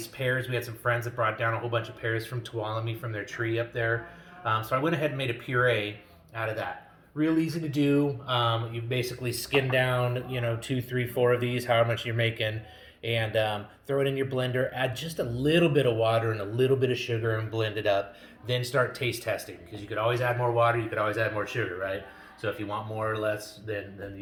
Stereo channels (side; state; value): both; identical; correlation 1.00